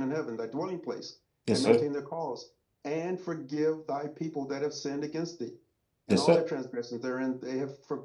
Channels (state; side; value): identical; both; correlation 1.00